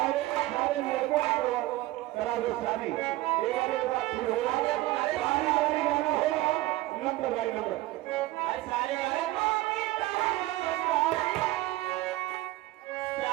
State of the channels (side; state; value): left; quieter; 17.8 dB